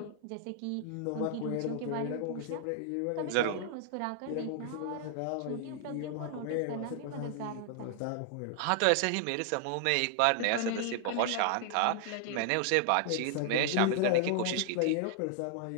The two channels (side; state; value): both; different; correlation 0.00